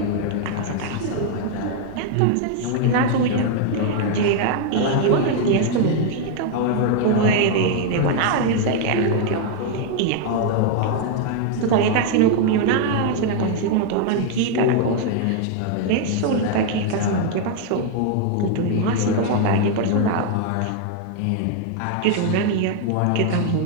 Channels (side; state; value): both; different; correlation 0.00